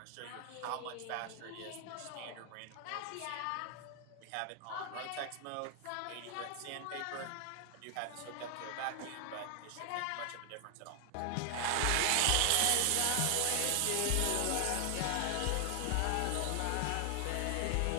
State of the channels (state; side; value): different; both; correlation 0.00